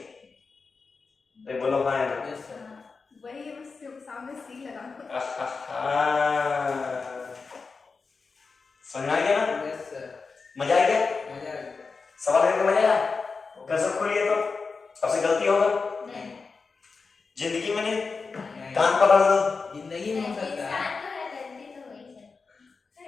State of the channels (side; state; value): right; quieter; 4.6 dB